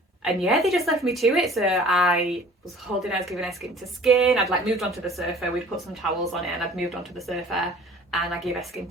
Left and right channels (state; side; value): normal; both; correlation 0.48